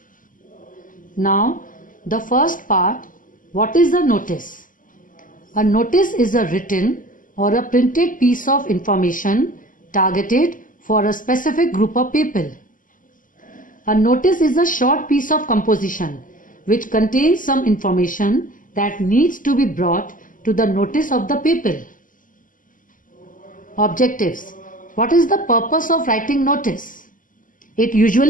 Now, the first part, what is a notice? A notice is a written or a printed piece of information targeted for a specific group of people. A notice is a short piece of composition which contains some information that needs to be brought to the notice of the people. Objectives. What is the purpose of writing notice? It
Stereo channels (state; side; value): late; right; 0.39 ms